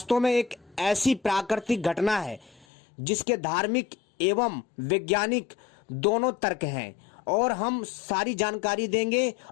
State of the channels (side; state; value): right; drops out; at 2.7 s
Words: में एक ऐसी प्राकृतिक घटना है जिसके धार्मिक एवं वैज्ञानिक दोनों तर्क हैं और हम सारी जानकारी देंगे